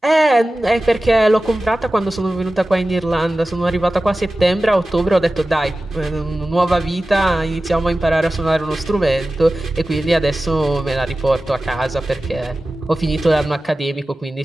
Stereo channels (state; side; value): normal; both; correlation 0.95